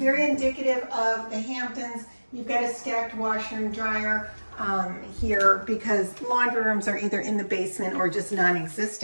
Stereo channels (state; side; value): inverted; both; correlation -1.00